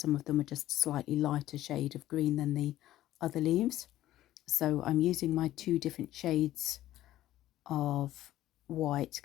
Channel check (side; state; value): right; quieter; 14.1 dB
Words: of them are just slightly lighter shade of green than the other leaves. So I'm using my two different shades of white